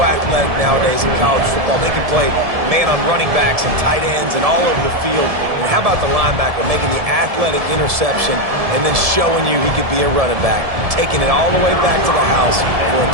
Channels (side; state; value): left; late; 1.7 ms